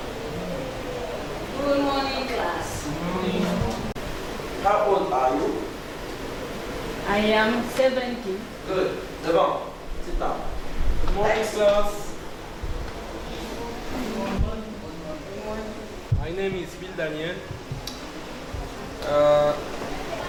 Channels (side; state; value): both; identical; correlation 1.00